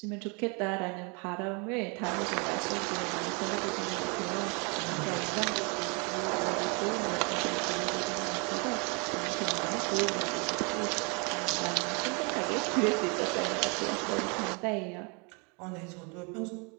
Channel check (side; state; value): left; quieter; 32.7 dB